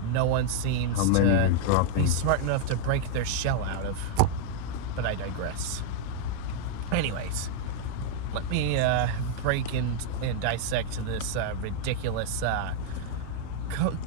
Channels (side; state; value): both; different; correlation 0.00